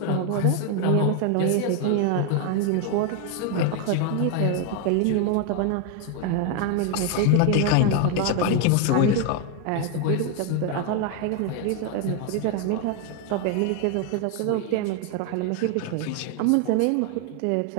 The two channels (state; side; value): different; both; correlation 0.01